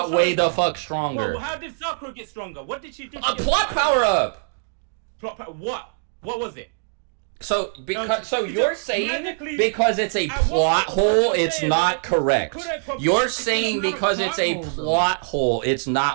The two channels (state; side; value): silent; left; digital silence